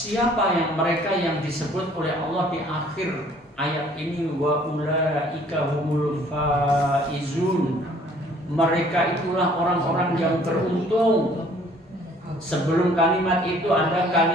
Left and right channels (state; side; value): normal; both; correlation 0.57